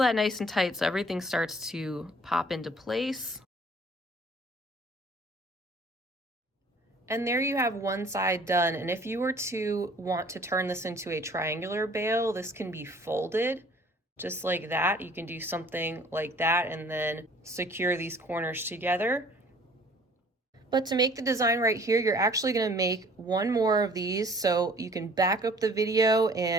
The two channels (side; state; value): both; normal; correlation 0.53